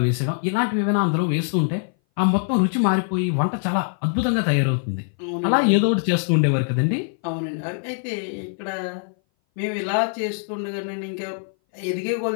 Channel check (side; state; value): right; silent; 59 dB below the other